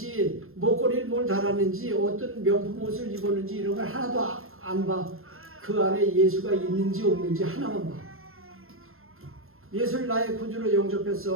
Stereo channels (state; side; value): late; left; 0.61 ms